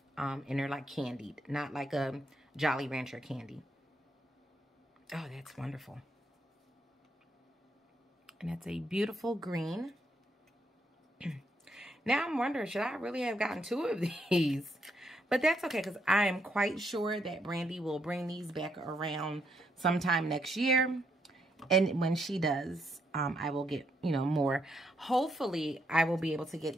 and they're like candied, not like a Jolly Rancher candy. Oh, that's wonderful. And that's a beautiful green. Now I'm wondering, should I really have gotten 2 of these? But that's okay, because I am quite sure that Brandy will bring these back around sometime next year. And when she does, I will get, you know, more. Hopefully, I will be able to get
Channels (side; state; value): both; normal; correlation 0.76